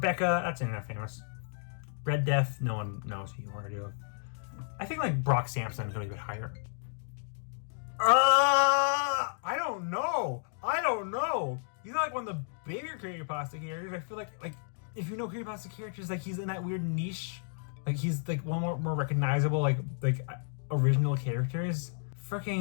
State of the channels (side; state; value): right; silent; digital silence